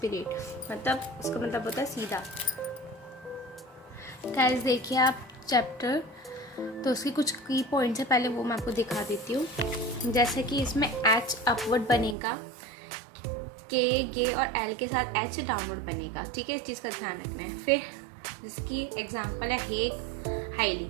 मतलब उसका मतलब होता है सीधा। गाइस देखिए आप चैप्टर, तो उसकी कुछ की पॉइंट्स है, पहले वो मैं आपको दिखा देती हूँ। जैसे कि इसमें एच अपवर्ड बनेगा, के गे और एल के साथ एच डाउनवर्ड बनेगा। ठीक है, इस चीज़ का ध्यान रखना है। फिर जिसकी एग्जाम्पल है हेक, हाईली।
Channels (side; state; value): left; drops out; at 12.2 s